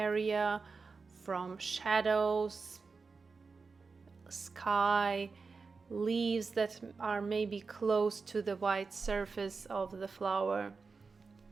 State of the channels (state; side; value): quieter; left; 4.6 dB